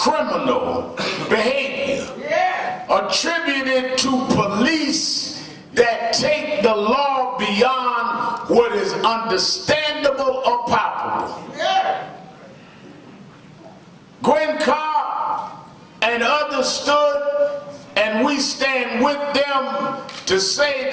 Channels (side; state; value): both; identical; correlation 1.00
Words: behavior attributed to police that take the law beyond what is understandable or palpable. Gwen Carr and others stood, and we stand with them to say